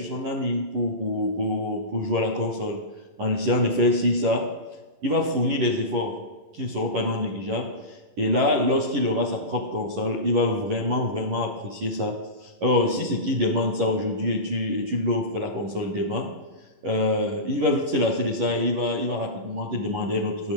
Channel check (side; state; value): left; late; 11 ms